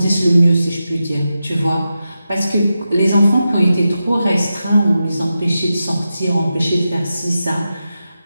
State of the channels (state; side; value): inverted; both; correlation -0.90